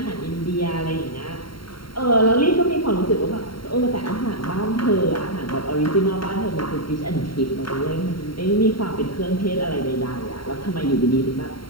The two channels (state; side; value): late; right; 0.73 ms